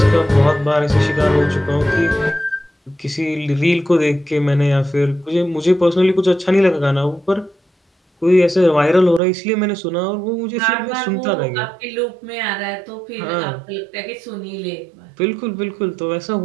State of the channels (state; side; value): drops out; left; at 9.2 s